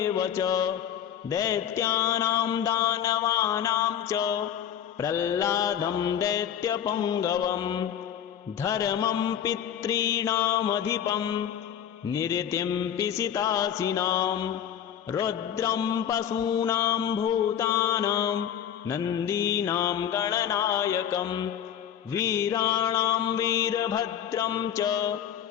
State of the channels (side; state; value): right; quieter; 9.5 dB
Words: च दैत्यानां दानवानां च प्रह्लादं दैत्यपुङ्गवं धर्मं पितॄणामधिपं निरतिं पिशितासिनां रुद्रं पशूनां भूतानां नन्दीनां गणनायकं वीराणां वीरभद्रं च